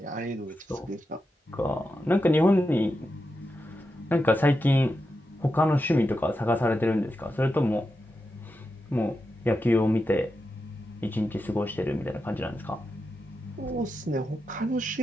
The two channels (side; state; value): both; normal; correlation 0.88